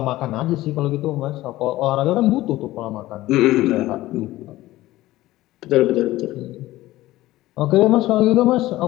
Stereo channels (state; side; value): quieter; right; 16.7 dB